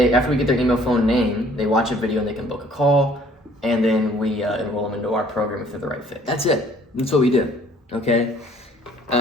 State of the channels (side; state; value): both; normal; correlation 0.58